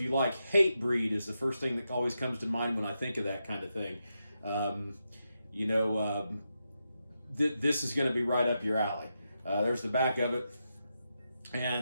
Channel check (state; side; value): inverted; both; correlation -0.86